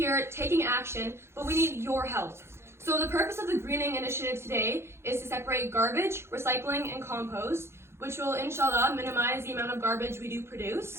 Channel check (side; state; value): left; late; 0.12 ms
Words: taking action, but we need your help. So the purpose of the greening initiative today is to separate garbage, recycling, and compost, which will, inshallah, minimize the amount of garbage we do